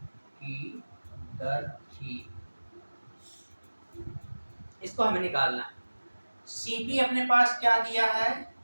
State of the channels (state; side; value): inverted; both; correlation -1.00